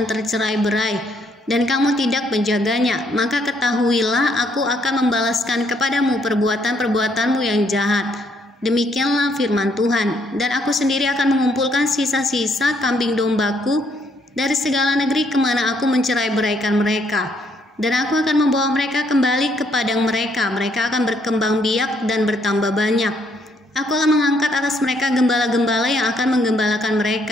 tercerai-berai, dan kamu tidak menjaganya. Maka ketahuilah aku akan membalaskan kepadamu perbuatan-perbuatanmu yang jahat. Demikianlah firman Tuhan, dan aku sendiri akan mengumpulkan sisa-sisa kambing dombaku dari segala negeri kemana aku mencerai-beraikan mereka, dan aku akan membawa mereka kembali ke padang mereka. Mereka akan berkembang biak dan bertambah banyak. Aku akan mengangkat atas mereka gembala-gembala yang akan menggembalakan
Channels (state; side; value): normal; both; correlation 0.70